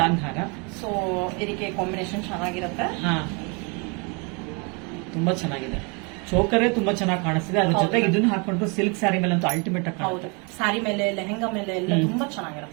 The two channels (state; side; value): quieter; left; 32.3 dB